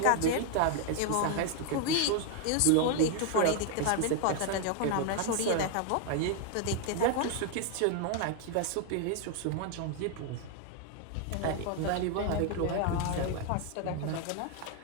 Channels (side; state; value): both; different; correlation 0.00